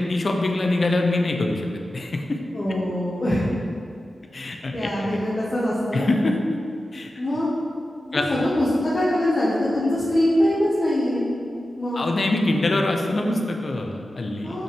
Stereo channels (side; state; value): both; normal; correlation 0.93